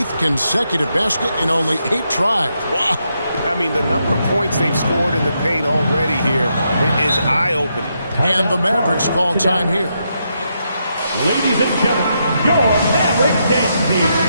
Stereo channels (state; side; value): inverted; both; correlation -0.81